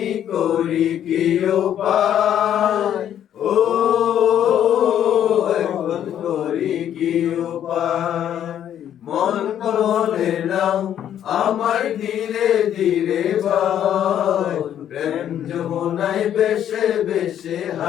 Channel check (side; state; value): right; quieter; 10.3 dB